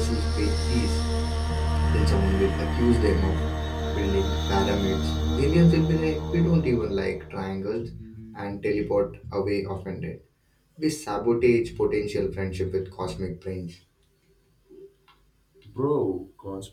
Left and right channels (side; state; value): both; identical; correlation 1.00